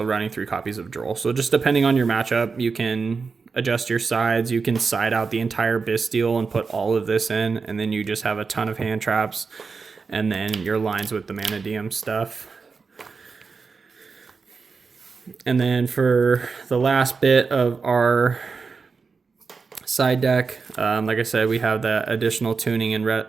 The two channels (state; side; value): quieter; left; 4.9 dB